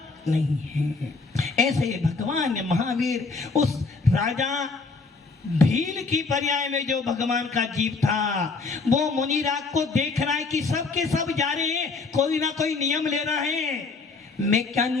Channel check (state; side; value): quieter; right; 4.1 dB